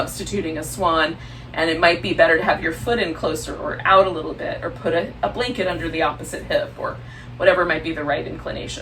a swan, and it might be better to have your foot in closer or out a little bit, or put a blanket under the opposite hip, or whatever might be the right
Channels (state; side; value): identical; both; correlation 1.00